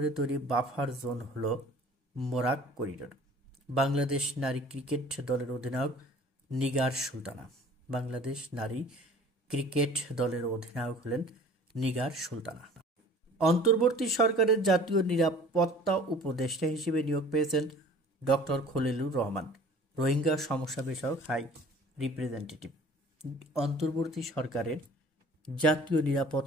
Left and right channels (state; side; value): normal; both; correlation 0.48